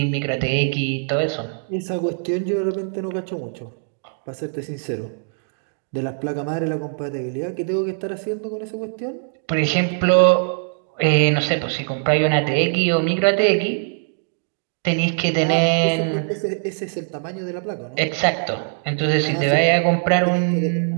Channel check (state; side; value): silent; left; 64 dB below the other